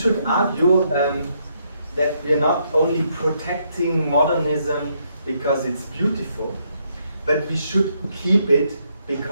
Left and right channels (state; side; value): inverted; both; correlation -0.74